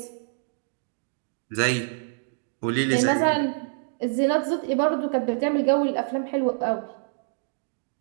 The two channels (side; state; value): left; silent; digital silence